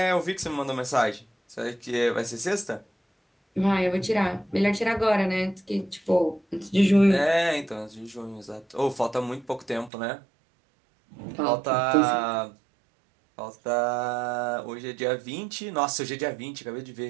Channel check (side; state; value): left; drops out; at 9.9 s